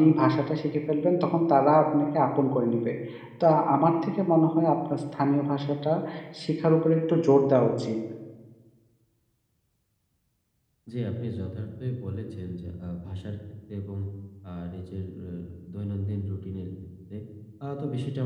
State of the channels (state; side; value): identical; both; correlation 1.00